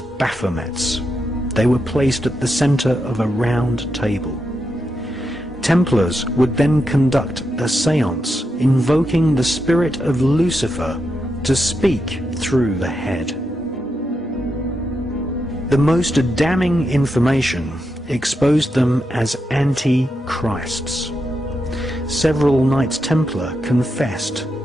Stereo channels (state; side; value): normal; both; correlation 0.85